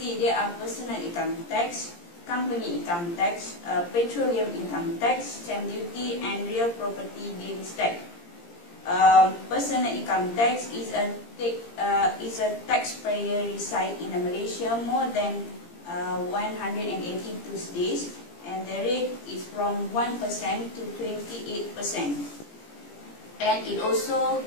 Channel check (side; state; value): right; late; 17 ms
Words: there are personal income tax, company income tax, petroleum income tax, stamp duty, and real property gains tax. Personal income tax is a taxpayer reside in Malaysia more than 182 days, and the rate is from 1% to 28%. And it also